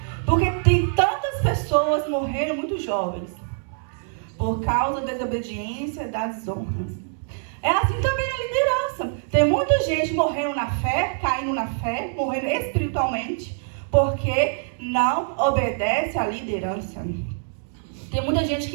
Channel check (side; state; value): left; silent; 62 dB below the other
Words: Porque tem tantas pessoas morrendo muito jovens por causa da desobediência, das desonras. É assim também na liderança. Tem muita gente morrendo na fé, caindo na fé, morrendo espiritualmente, porque não obedece à liderança. Tem muita gente